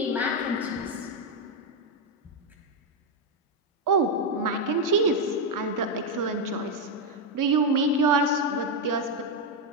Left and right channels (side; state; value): both; normal; correlation 0.04